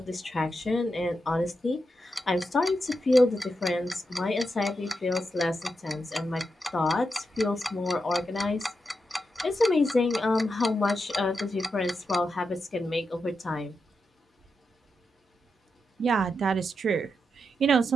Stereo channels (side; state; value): both; normal; correlation 0.86